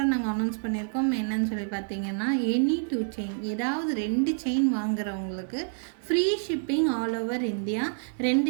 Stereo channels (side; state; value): left; silent; digital silence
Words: நாங்கள் அனௌன்ஸ் பண்ணியிருக்கோம். என்னன்னு சொல்லி பார்த்தீங்கன்னா, எனி 2 செயின், ஏதாவது 2 செயின் வாங்குறவங்களுக்கு free shipping all over India.